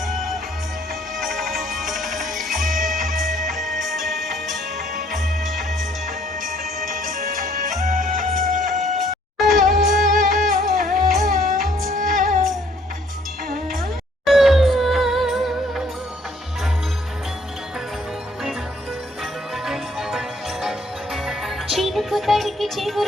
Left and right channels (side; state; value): both; normal; correlation 0.63